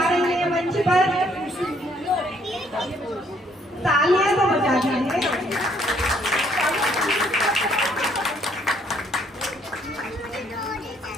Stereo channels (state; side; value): normal; both; correlation 0.66